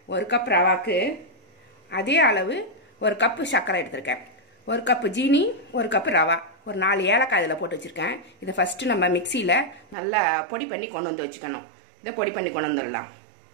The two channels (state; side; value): drops out; left; at 10.0 s